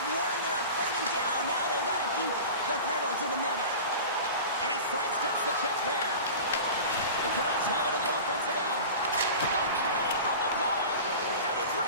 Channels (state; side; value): inverted; both; correlation -0.34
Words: worn their opponent down. Now they've got to keep the pedal to the metal. And he sidesteps the check there. The Canucks have it in the offensive end. The cannon from the point, and a